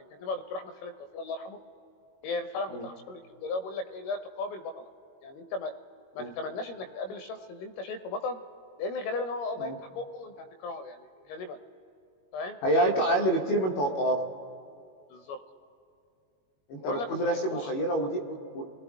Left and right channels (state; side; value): late; right; 21 ms